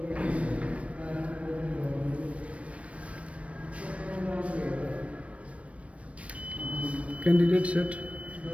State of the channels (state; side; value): late; left; 0.063 ms